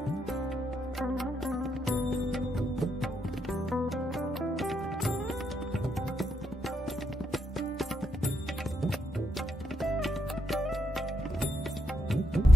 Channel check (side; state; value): both; normal; correlation 0.79